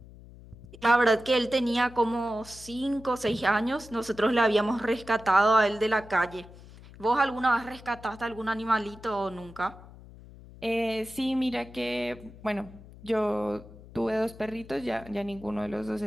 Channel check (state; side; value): noise; left; hum, 19 dB below the sound